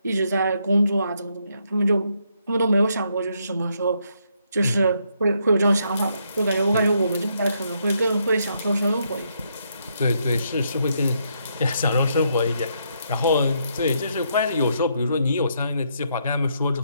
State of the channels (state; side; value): inverted; both; correlation -0.76